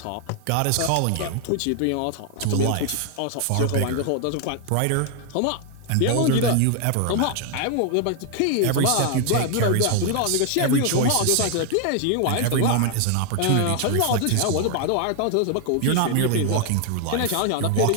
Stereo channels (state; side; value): different; both; correlation 0.00